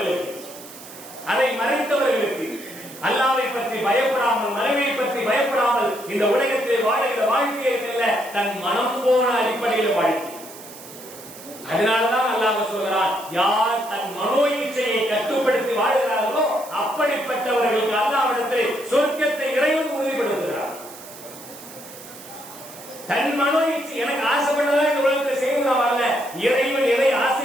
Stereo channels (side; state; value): right; noise; hiss, 16 dB below the sound